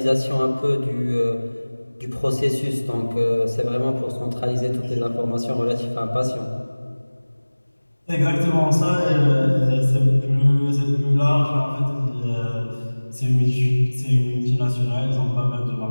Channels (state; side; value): inverted; both; correlation -1.00